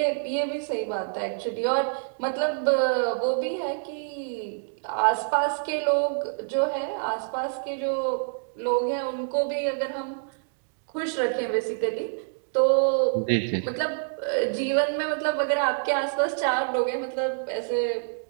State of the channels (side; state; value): left; silent; digital silence